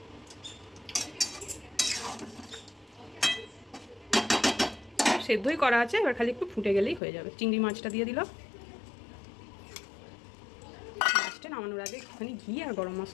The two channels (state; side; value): drops out; right; at 7.0 s